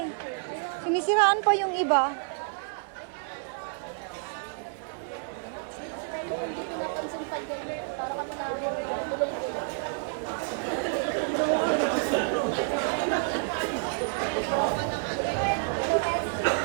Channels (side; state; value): left; silent; 58 dB below the other